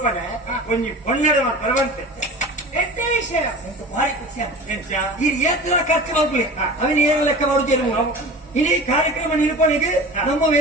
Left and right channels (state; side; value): normal; both; correlation 0.36